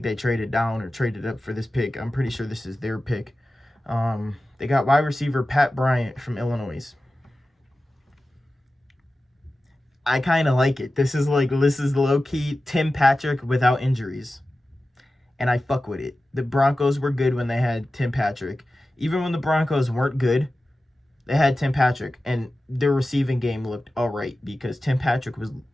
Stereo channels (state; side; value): normal; both; correlation 0.95